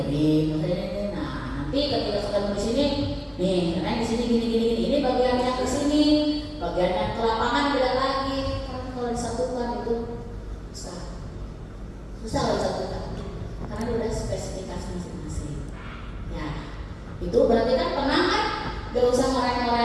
Nah nanti ketika sudah di sini nih, karena di sini gini, ini bagian yang ke sini, bagian yang ke lapangan beda lagi. Karena kalau di Tapi kan tenang kan, gak usah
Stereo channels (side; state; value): both; identical; correlation 1.00